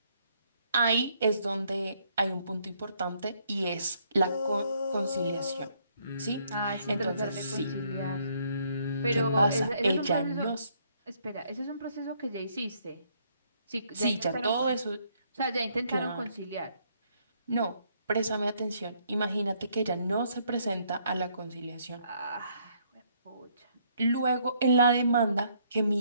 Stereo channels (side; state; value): both; inverted; correlation -0.69